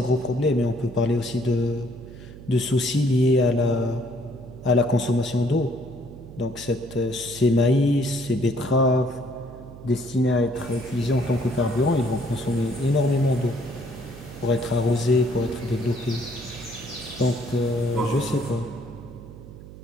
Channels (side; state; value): right; noise; hum, 16 dB below the sound